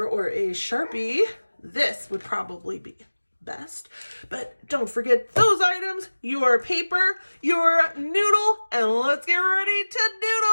or a Sharpie. This would probably be best, but don't forget those items, your paper, your noodle, and let's get ready to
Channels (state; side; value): inverted; both; correlation -1.00